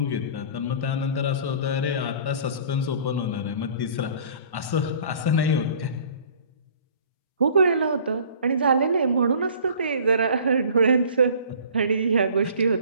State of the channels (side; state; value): right; late; 1.1 ms